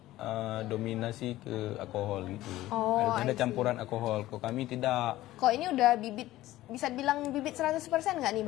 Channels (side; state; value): right; quieter; 15.8 dB